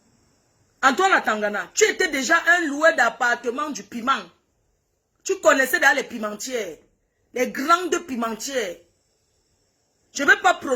Antoine Atangana, tu étais déjà un loueur d'appartement du piment. Tu connaissais dans les pimentières. Les grandes pimentières. Je ne vais pas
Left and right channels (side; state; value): both; identical; correlation 1.00